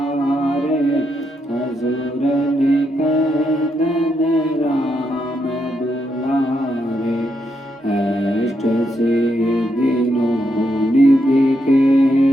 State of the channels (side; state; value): both; normal; correlation 0.80